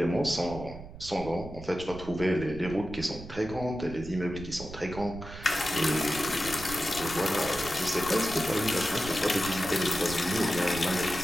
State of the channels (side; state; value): right; noise; rumble, 13 dB below the sound